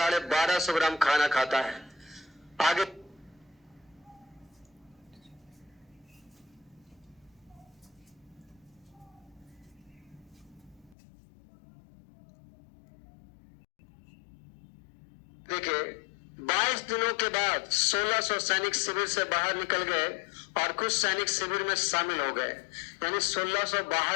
ग्राम खाना खाता है। आगे देखिए, 22 दिनों के बाद 1600 सैनिक शिविर से बाहर निकल गए और कुछ सैनिक शिविर में शामिल हो गए। यानी 1600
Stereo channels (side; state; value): right; drops out; at 11.0 s